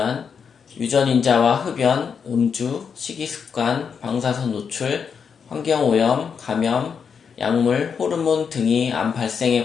유전인자와 흡연, 음주, 식이습관, 방사선 노출, 환경오염, 감염, 약물, 호르몬 등이 암 발생에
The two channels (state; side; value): quieter; right; 6.5 dB